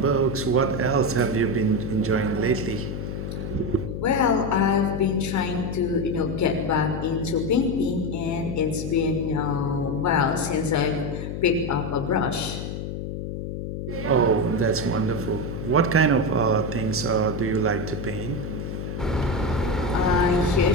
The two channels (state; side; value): noise; left; hum, 5 dB below the sound